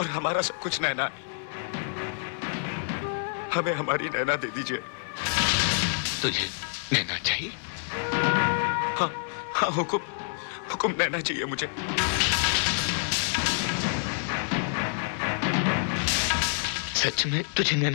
हमारा सब कुछ नैना है। हमें हमारी नैना दे दीजिए। तुझे नैना चाहिए? हाँ हाँ हुकुम, हुकुम नैना चाहिए मुझे। सच में तुझे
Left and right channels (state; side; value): silent; right; digital silence